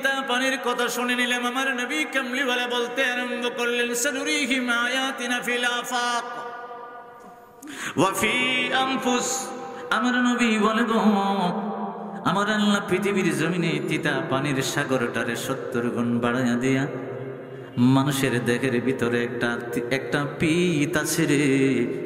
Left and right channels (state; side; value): identical; both; correlation 1.00